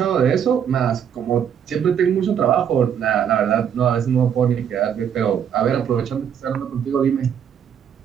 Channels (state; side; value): quieter; left; 8.4 dB